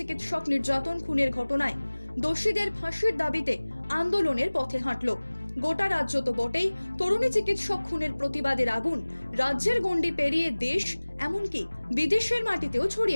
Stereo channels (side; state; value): both; inverted; correlation -1.00